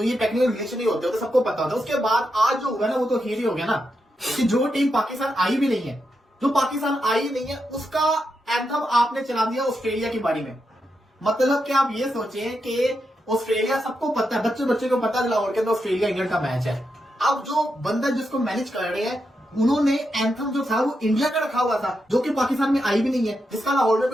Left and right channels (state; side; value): normal; both; correlation 0.85